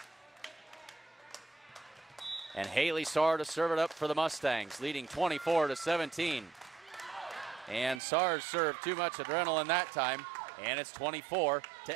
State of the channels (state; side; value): drops out; left; at 8.0 s